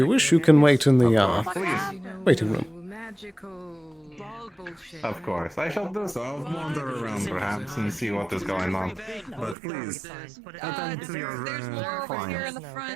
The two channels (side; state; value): left; drops out; at 9.6 s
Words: wish, you can wait in the waiting room. Of course, I shall do so. I'll wander around perhaps and see what is going on. But please, attend to your There's more over here in clients. the